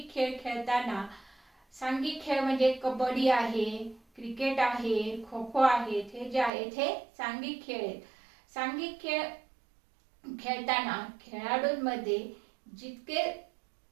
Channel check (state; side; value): drops out; left; at 6.5 s